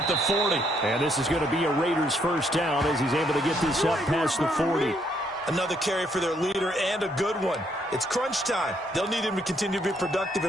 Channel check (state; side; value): normal; both; correlation 0.72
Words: the 40. And this is going to be a Raiders first down as he's able to get this up past the 40. Another carry for their leader, and a good one. It's crunch time. They'll need him to continue to be productive